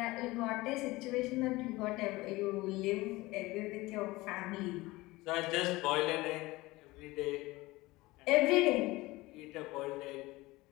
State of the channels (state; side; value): quieter; right; 20.4 dB